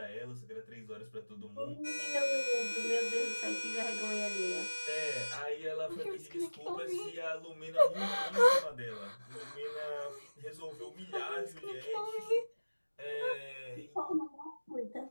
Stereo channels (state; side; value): inverted; both; correlation -1.00